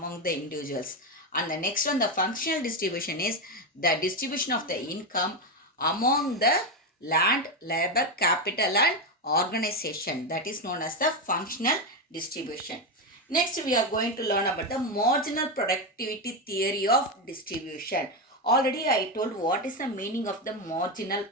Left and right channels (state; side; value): normal; both; correlation 0.10